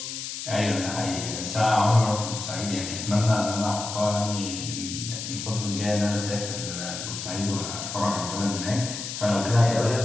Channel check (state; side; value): noise; left; hiss, 7 dB below the sound